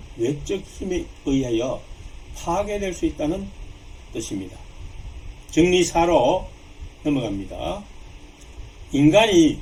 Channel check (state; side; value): identical; both; correlation 1.00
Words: 외적 힘에 의하여 파괴될 수 있다는 뜻입니다. 정리 4로 넘어갑니다. 인간이